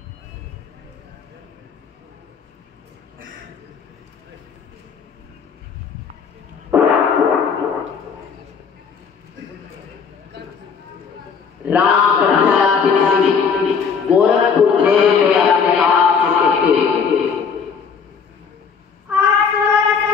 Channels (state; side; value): quieter; right; 6.1 dB